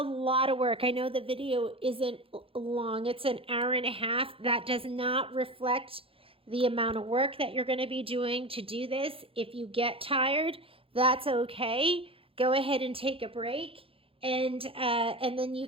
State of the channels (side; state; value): left; late; 0.27 ms